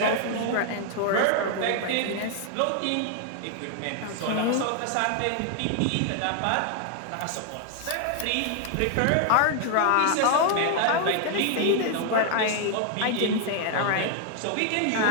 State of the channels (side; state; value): both; different; correlation 0.00